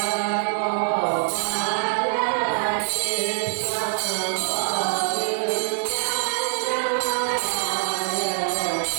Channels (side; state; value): left; silent; digital silence